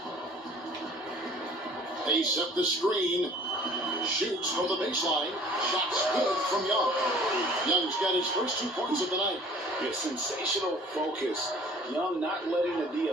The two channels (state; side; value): normal; both; correlation 0.50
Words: They set the screen. Shoots from the baseline. Shots good from Young. Young's got his first 2 points of the night. Yeah, sensational focus. Young not letting the D